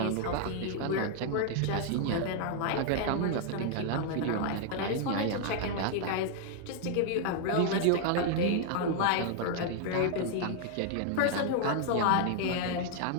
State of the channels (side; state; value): both; different; correlation 0.00